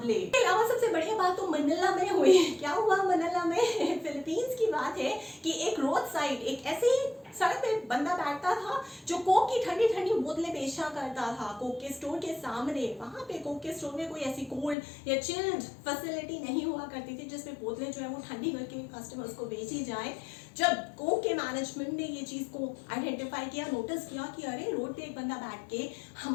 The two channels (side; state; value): right; drops out; at 14.8 s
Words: इसके अलावा सबसे बढ़िया बात तो मनीला में हुई। क्या हुआ मनीला में? फिलीपींस की बात है कि एक रोड साइड, एक ऐसे ही सड़क पे बंदा बैठता था जो कोक की ठंडी ठंडी बोतलें बेचा करता था कोक के स्टोर के सामने। वहां पे कोक के स्टोर में कोई ऐसी कोल्ड या चिल्ड फैसिलिटी नहीं हुआ करती थी जिसमें बोतलें जो है वो ठंडी करके कस्टमर्स को बेची जाए। जब कोक के मैनेजमेंट ने ये चीज को आइडेंटिफाई किया, नोटिस किया कि अरे रोड पे एक बंदा बैठ के